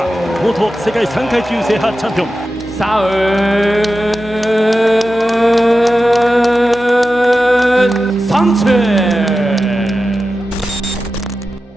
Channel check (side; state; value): both; normal; correlation 0.92